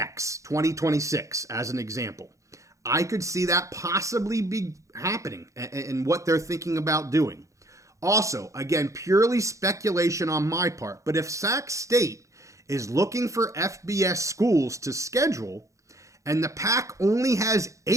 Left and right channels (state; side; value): late; left; 0.15 ms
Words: 2026, as an example. I could see that possibly be happening and what they're thinking about doing. Also, again, purely speculation on my part, but if Sac State is looking for FBS schools to schedule, and the PAC only has